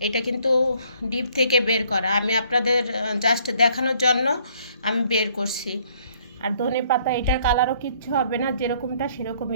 এটা কিন্তু ডিপ থেকে বের করা, আমি আপনাদের জাস্ট দেখানোর জন্য আমি বের করছি। আর ধনে পাতা, এটার কালারও কিচ্ছু হবে না, যেরকমটা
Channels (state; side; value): inverted; both; correlation -0.63